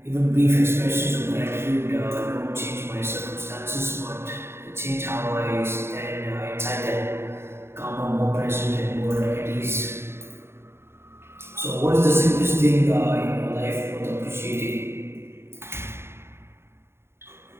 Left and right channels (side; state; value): left; late; 0.12 ms